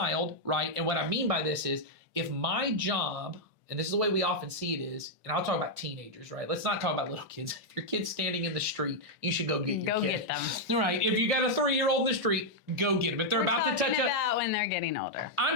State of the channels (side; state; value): both; normal; correlation -0.03